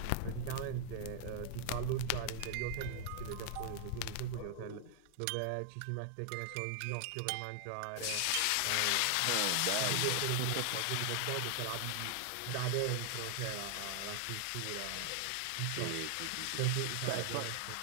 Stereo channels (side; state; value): both; different; correlation 0.00